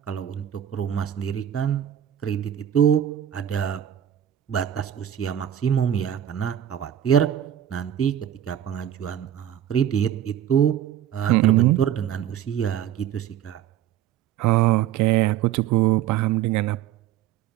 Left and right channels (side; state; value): left; quieter; 10.5 dB